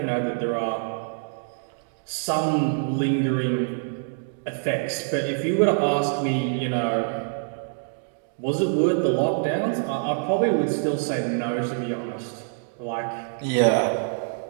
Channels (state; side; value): silent; left; digital silence